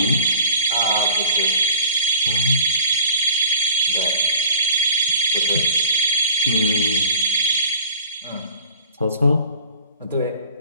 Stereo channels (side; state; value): both; inverted; correlation -0.45